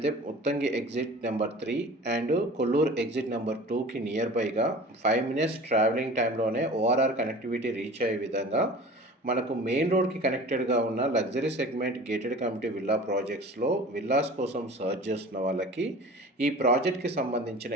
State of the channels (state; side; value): normal; both; correlation 0.41